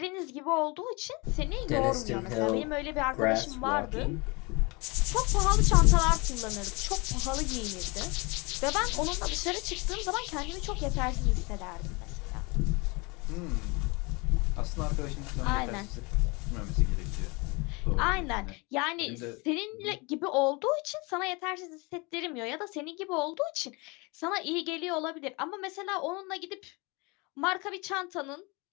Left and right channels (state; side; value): quieter; right; 27.7 dB